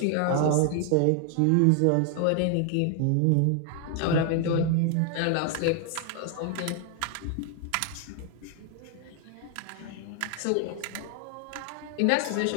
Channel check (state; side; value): different; both; correlation 0.00